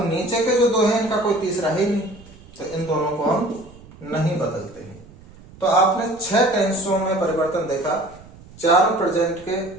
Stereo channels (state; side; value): noise; right; rumble, 22 dB below the sound